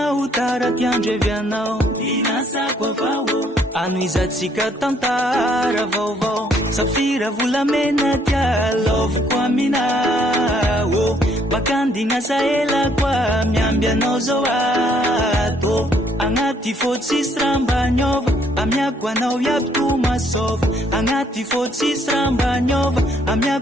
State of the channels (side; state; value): both; normal; correlation 0.67